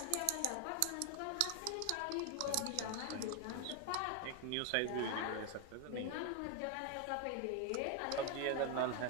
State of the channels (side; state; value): both; different; correlation 0.01